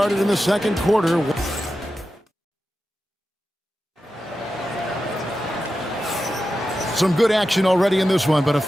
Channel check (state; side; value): normal; both; correlation 0.91